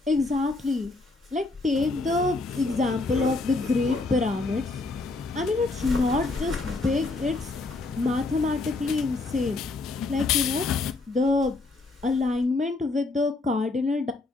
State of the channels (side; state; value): right; quieter; 3.4 dB